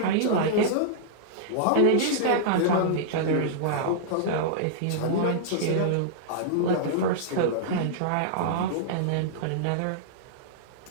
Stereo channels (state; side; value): different; both; correlation -0.02